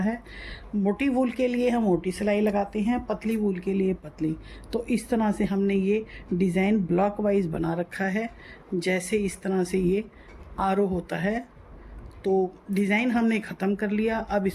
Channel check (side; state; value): both; identical; correlation 1.00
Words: मोटी वूल के लिए हम मोटी सिलाई लगाते हैं, पतली वूल के लिए पतली। तो इस तरह से हमने ये डिज़ाइन ब्लॉक वाइज बना रखा है। जैसे इस तरह से ये आरो होता है। तो डिज़ाइन हमने ख़त्म कर लिया, अब